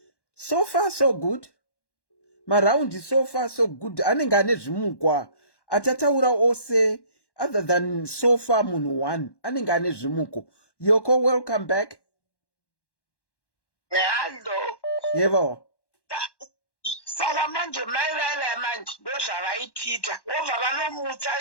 So far so good. Maraundi so far so good. Anenge ane zvimukwa. Atataura ose other than so far munhu 1. Anenge ane zvimuko. Yoko, welcome back. Hello. Yebo. Saka manje maivava manje ndozvavaitita. Wobva vanomutsa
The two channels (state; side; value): late; right; 1.1 ms